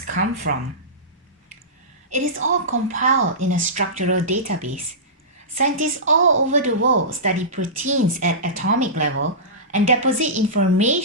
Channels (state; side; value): normal; both; correlation -0.19